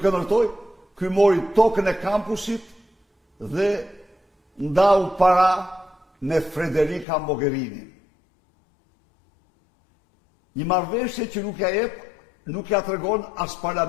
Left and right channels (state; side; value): drops out; right; at 7.1 s